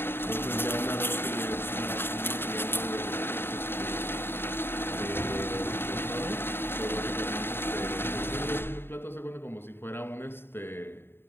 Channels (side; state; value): right; late; 0.11 ms